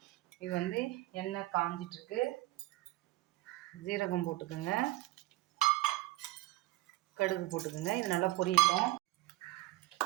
இது வந்து எண்ணெய் காஞ்சிட்ருக்கு. ஜீரகம் போட்டுக்கோங்க, கடுகு போட்டுக்கோங்க. இது நல்லா பொரியட்டும்.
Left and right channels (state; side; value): quieter; left; 18.1 dB